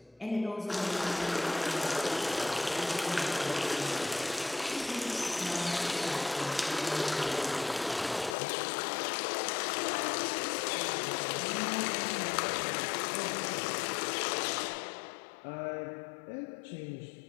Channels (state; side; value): drops out; right; at 8.3 s